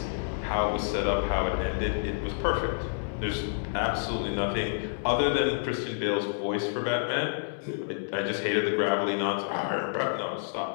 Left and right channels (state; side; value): silent; right; digital silence